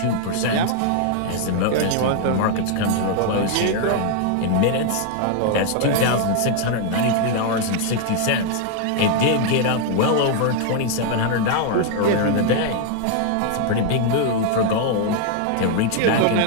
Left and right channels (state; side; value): different; both; correlation 0.00